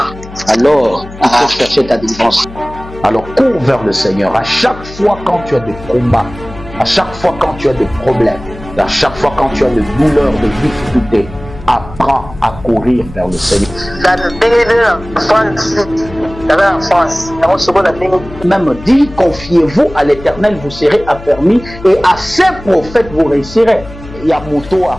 Alors, il faut chercher ta délivrance. Alors, cours vers le Seigneur. À chaque fois quand tu as des combats, à chaque fois quand tu as des problèmes, à chaque fois quand tu as des douleurs, des difficultés, apprends à courir vers le Seigneur. Même dit, confiez-vous à l'Éternel, vous serez affermis, et à ses prophètes vous réussirez. Yamuto a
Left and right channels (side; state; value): left; noise; hum, 15 dB below the sound